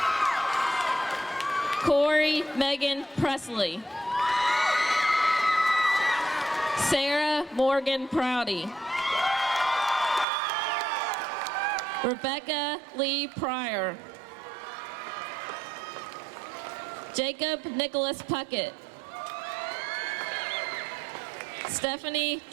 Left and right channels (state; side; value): drops out; left; at 10.2 s